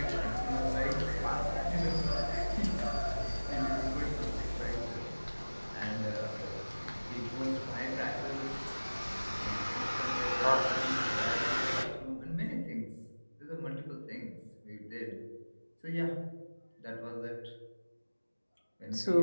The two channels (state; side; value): inverted; both; correlation -1.00